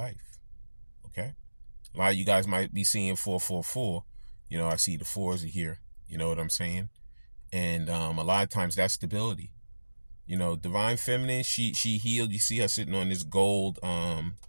Okay? A lot of you guys might be seeing 444. I see the 4s are here. You know what I'm saying? And a lot of times that's stability. Divine feminine, she healed. You see her sitting on this gold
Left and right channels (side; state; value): both; inverted; correlation -1.00